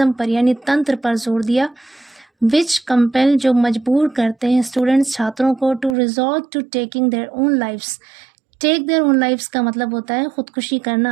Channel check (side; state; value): left; drops out; at 6.0 s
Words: पर यानी तंत्र पर जोर दिया। विच कंपेल, जो मजबूर करते हैं स्टूडेंट्स, छात्रों को to resort to taking their own lifes. Take their own lifes का मतलब होता है खुदकुशी